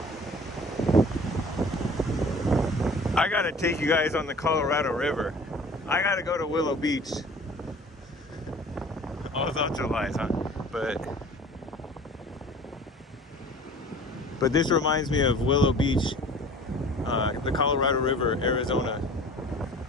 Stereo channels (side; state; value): both; normal; correlation 0.46